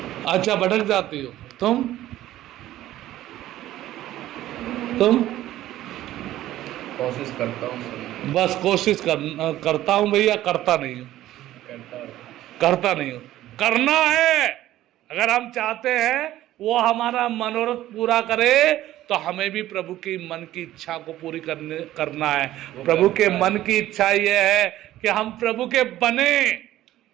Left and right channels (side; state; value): left; quieter; 14.2 dB